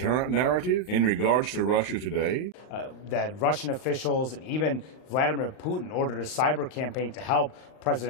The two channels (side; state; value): right; late; 39 ms